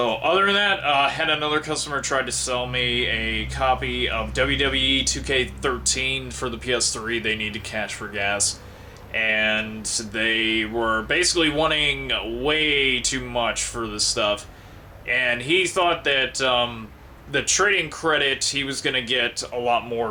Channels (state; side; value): identical; both; correlation 1.00